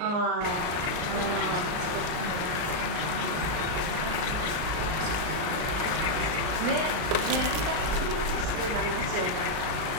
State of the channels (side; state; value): left; late; 38 ms